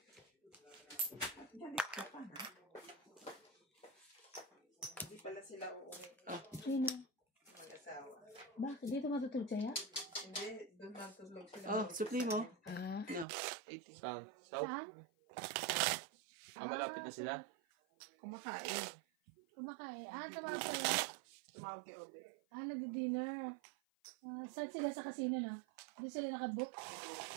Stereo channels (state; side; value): drops out; left; at 13.2 s